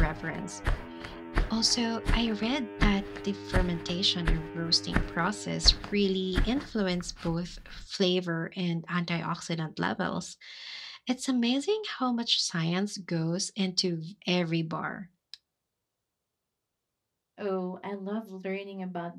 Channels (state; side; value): identical; both; correlation 1.00